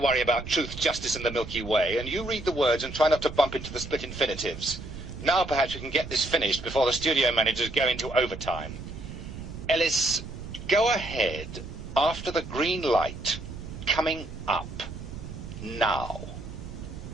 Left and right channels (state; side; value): noise; right; rumble, 10 dB below the sound